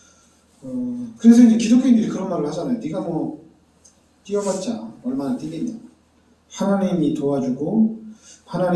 그래서 이제 기독교인들이 그런 말을 하잖아요. 네가 뛰어봤자 얼마나 뛰겠냐. 하나님이 도와주고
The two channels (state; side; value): identical; both; correlation 1.00